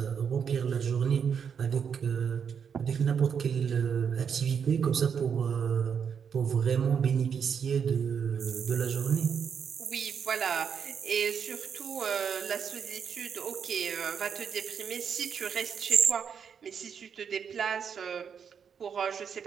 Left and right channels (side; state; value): left; quieter; 7.1 dB